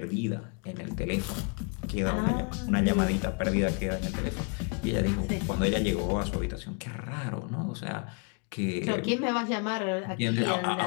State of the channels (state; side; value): quieter; right; 37.6 dB